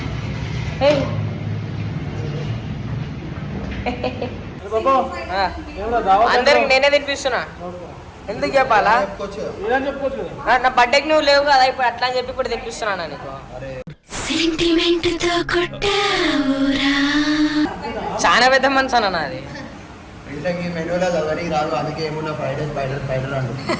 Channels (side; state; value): both; identical; correlation 1.00